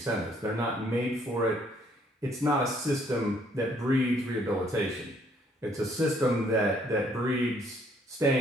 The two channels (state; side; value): normal; both; correlation 0.65